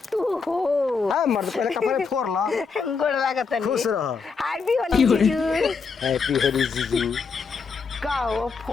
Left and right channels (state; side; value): quieter; right; 5.1 dB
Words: तू हो। हाँ मर्द पहले कपड़े फोड़ ला। गोड़ लागत नहीं। खुश रहो। हैप्पी होली जीजू। हैप्पी होली जीजू। कहो